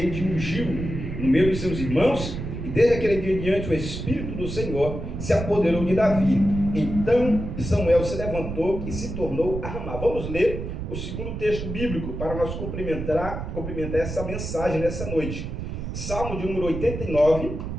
e ungiu no meio de seus irmãos, e desde aquele dia em diante o Espírito do Senhor se apoderou de Davi. Então Samuel se levantou e se tornou a Ramá. Vamos ler o segundo texto bíblico para nós complementar essa mensagem nessa noite. Salmo de número 89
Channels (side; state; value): right; noise; rumble, 6 dB below the sound